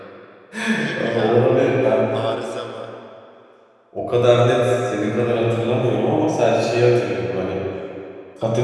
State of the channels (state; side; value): identical; both; correlation 1.00